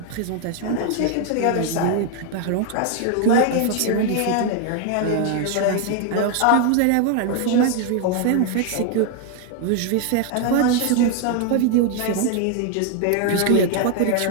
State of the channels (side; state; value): both; different; correlation 0.00